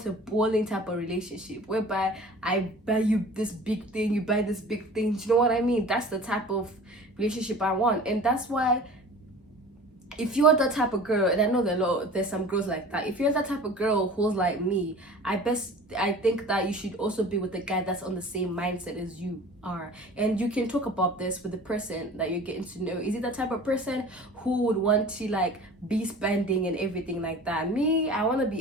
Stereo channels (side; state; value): both; normal; correlation 0.42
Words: a bowling type of relationship whereby I buy you this big thing, you buy this big thing. Do you know what I mean? That's the type of relationship I want. And that's why, if you're that type of girl, and I know there's some girls like that, if you're that type of girl who's like me, I think that you should also be with a guy that's on the same mindset as you are. And you can talk about this with the person that you're getting to know. Is it the type of person who would want to, like, be spending and everything like that? Me, I want to